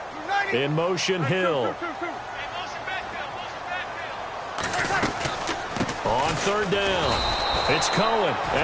In motion, Hill. On 3rd down. It's Cohen,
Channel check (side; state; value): both; identical; correlation 1.00